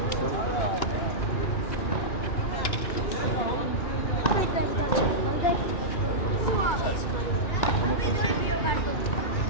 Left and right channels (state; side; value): late; right; 2.8 ms